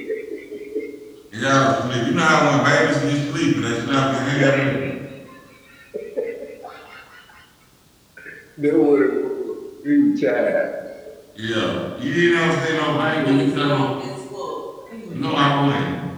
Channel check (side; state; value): both; identical; correlation 1.00